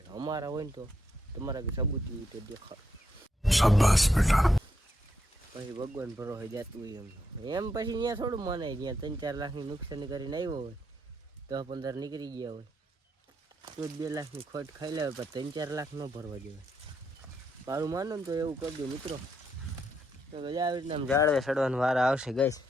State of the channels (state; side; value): normal; both; correlation 0.78